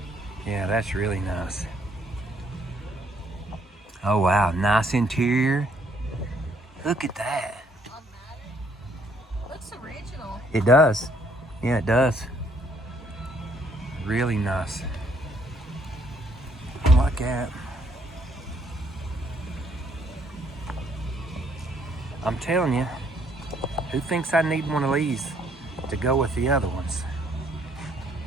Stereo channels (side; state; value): both; normal; correlation 0.67